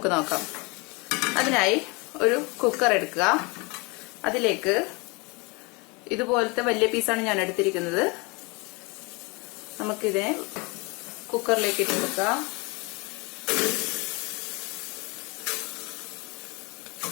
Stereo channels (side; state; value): right; quieter; 28.1 dB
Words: നോക്കാം. അതിനായി ഒരു കുക്കർ എടുക്കുക. അതിലേക്ക് ഇതുപോലത്തെ വലിയ പീസാണ് ഞാൻ എടുത്തിരിക്കുന്നത്. നമുക്കിതിനെ കുക്കറിലേക്ക് ഇട്ട് കൊടുക്കാം.